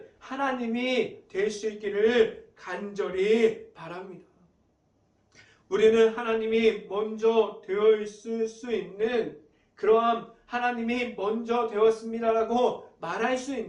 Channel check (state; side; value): identical; both; correlation 1.00